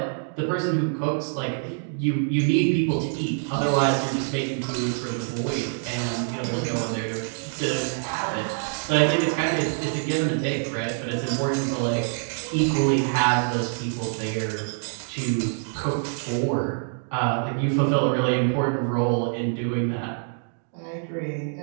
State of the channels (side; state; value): left; silent; 59 dB below the other